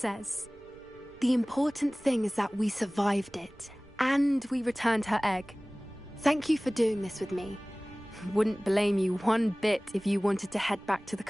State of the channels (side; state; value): right; noise; rumble, 25 dB below the sound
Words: The important thing is that we survived it, and we returned her egg. Thank you for doing this with me. Wouldn't blame you one bit if you wanted to head back to the